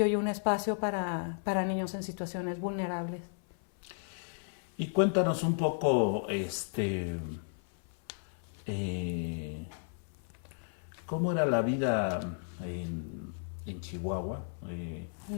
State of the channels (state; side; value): silent; right; 55 dB below the other